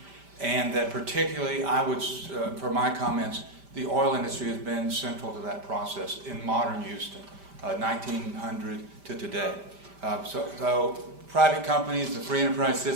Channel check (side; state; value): left; late; 5.1 ms